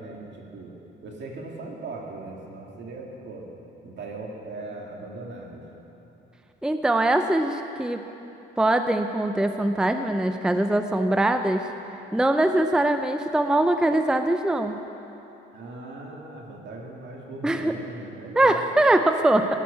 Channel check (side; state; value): both; normal; correlation 0.86